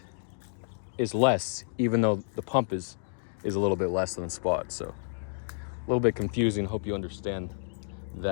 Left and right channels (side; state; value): right; silent; digital silence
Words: is less, even though the pump is a little bit less than spot. So a little bit confusing. Hope you understand